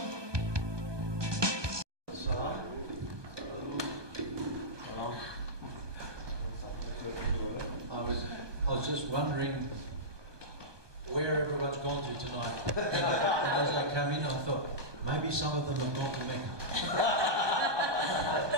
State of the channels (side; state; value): left; late; 1.2 ms